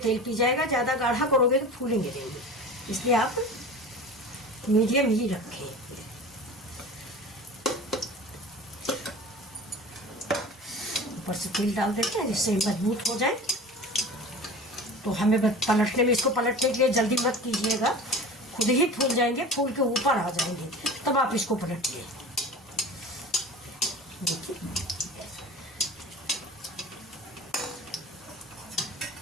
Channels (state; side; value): normal; both; correlation 0.37